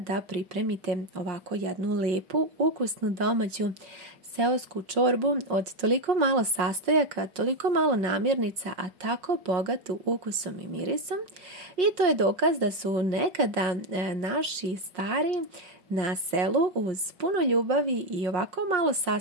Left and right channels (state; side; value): late; left; 5.5 ms